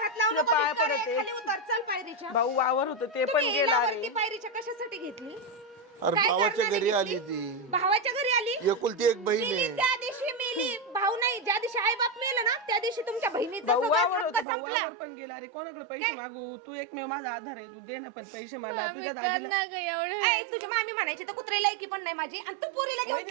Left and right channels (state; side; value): drops out; left; at 14.5 s